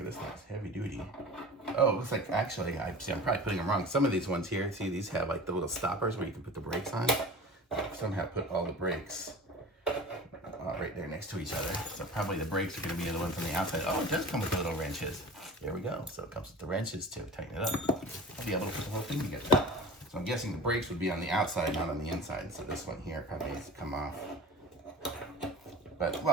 This thing's heavy duty. Oh, it looks like actually, I'm probably putting them wrong. Some of these ones here, see these have like the little stoppers where you can put the brakes on. Somehow put all the brakes right there next to each other. So probably the brakes are going to be the ones on the outside. Oh, it does come with the little wrenches. There we go. So it comes with the wrenches to tighten it up. I'll be able to put the whole thing together. So I'm guessing the brakes would be on the outside, not on the inside. So this one here probably needs to come off. But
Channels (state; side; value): normal; both; correlation 0.37